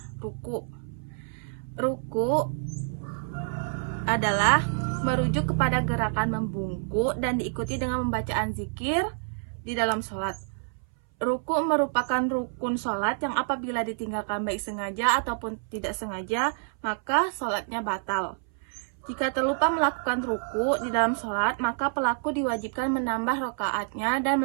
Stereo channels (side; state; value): left; silent; 59 dB below the other